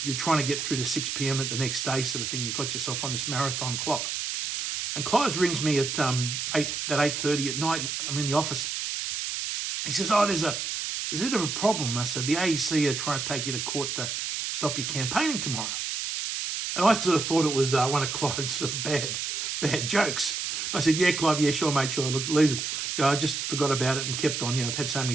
trying to get through to 6 p.m. at the next day, sort of thing. You've got yourself on this marathon clock." And Clive rings me at 8:30 at night. I'm in the office. He says, "Oh, there's a bit of a problem." I said, "The AEC are trying to take you to court to stop you campaigning tomorrow." And I sort of thought it was one of Clive's sort of bad jokes. I said, "Yeah, Clive, yeah, sure, mate, sure. Look, leave it. I just forgot about it and kept on. I've had so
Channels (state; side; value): noise; right; hiss, 3 dB below the sound